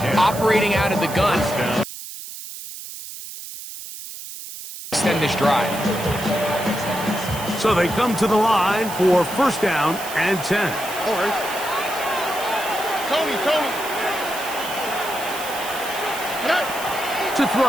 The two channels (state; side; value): noise; right; hiss, 11 dB below the sound